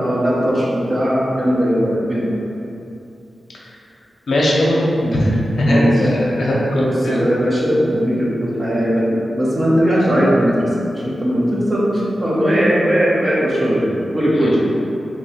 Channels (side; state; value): both; normal; correlation 0.92